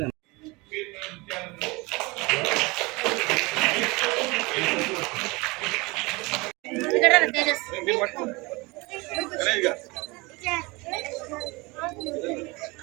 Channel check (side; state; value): left; quieter; 24.7 dB